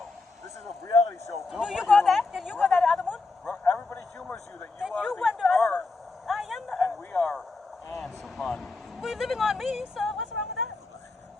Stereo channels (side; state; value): right; quieter; 3.6 dB